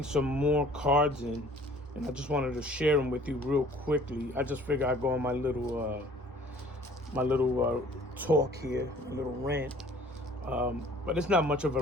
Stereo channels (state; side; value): normal; both; correlation 0.52